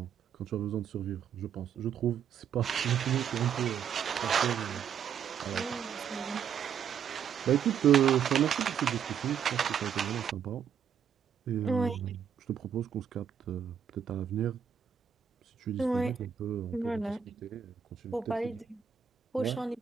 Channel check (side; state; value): left; quieter; 8.0 dB